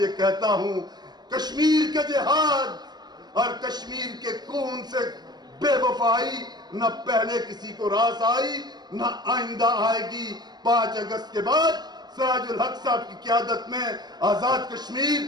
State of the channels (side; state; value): left; late; 0.20 ms